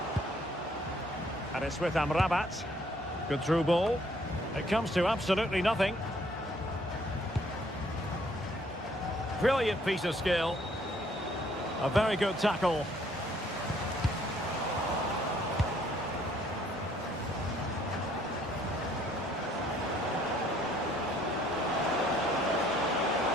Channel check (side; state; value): both; normal; correlation 0.63